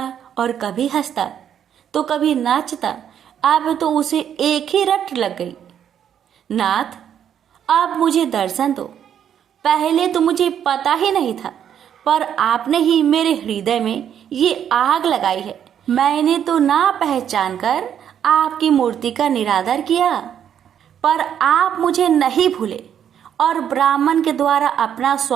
और कभी हंसता तो कभी नाचता। अब तो उसे एक ही रट लग गई, नाथ अब मुझे दर्शन दो। पहले तो मुझे पता ही नहीं था, पर आपने ही मेरे हृदय में ये आग लगाई है। मैंने तो ना पहचान कर आपकी मूर्ति का निरादर किया, पर आप मुझे नहीं भूले और ब्राह्मण के द्वारा अपना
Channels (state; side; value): quieter; left; 9.2 dB